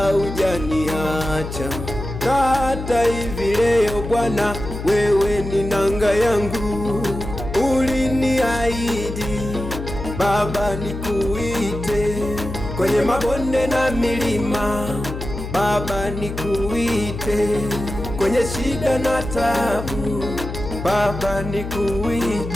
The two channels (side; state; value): left; noise; hum, 7 dB below the sound